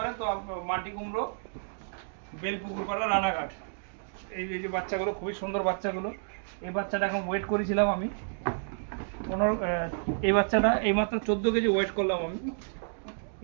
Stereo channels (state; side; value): silent; left; digital silence